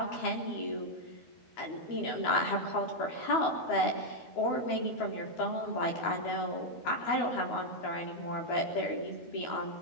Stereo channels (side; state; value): right; late; 12 ms